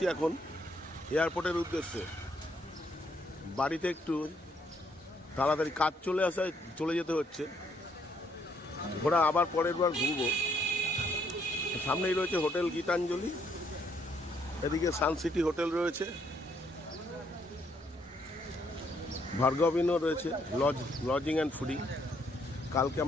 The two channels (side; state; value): both; normal; correlation 0.70